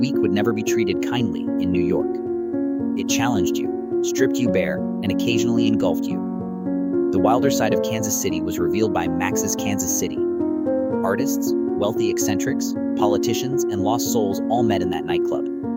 would never be treated kindly in New York. It challenged you, stripped you bare, and occasionally engulfed you. The wilder side of Kansas City was revealed by Max's Kansas City. Artists, wealthy eccentrics, politicians, and lost souls all met in that nightclub.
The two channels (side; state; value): both; identical; correlation 1.00